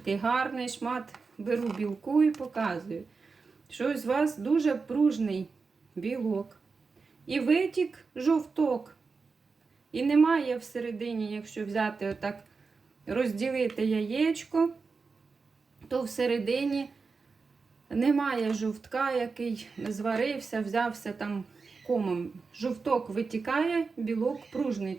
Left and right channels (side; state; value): left; quieter; 4.6 dB